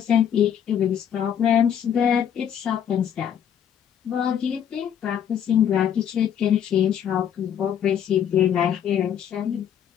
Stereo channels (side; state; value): right; quieter; 9.0 dB